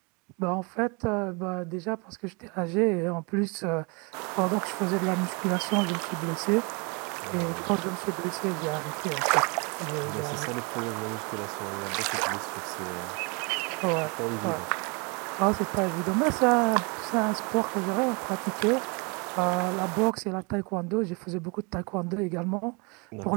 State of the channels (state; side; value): quieter; left; 31.1 dB